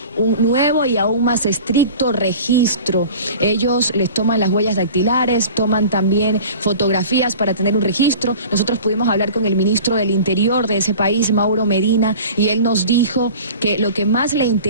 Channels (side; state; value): both; inverted; correlation -0.40